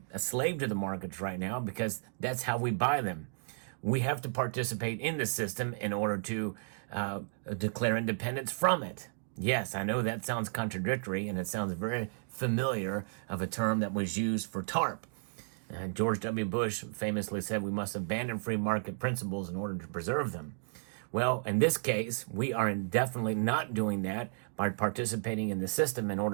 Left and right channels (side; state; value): left; silent; digital silence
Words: a slave to the markets right now because that's how we buy them. We have to participate in the system in order to declare independence from it. Yes, I know that sounds contradictory, and it sounds very familiar of a term that was used for TARP. George W. Bush famously said we must abandon free market principles in order to preserve them. Well, in this case, we are definitely not doing that by participating in the system in